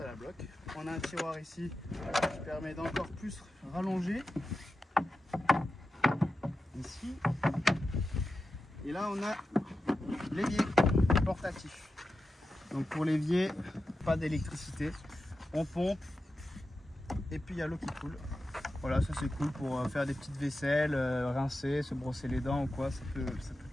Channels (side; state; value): both; normal; correlation 0.91